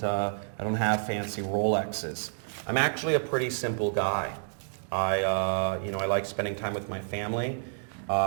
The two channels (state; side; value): silent; left; digital silence